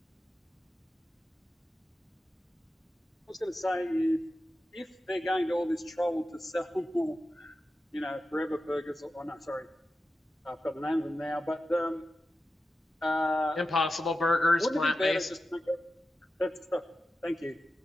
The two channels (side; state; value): both; normal; correlation 0.92